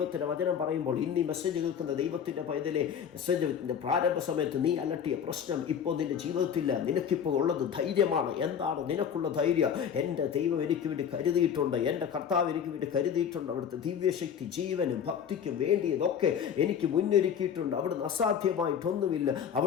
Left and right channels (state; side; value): quieter; right; 8.0 dB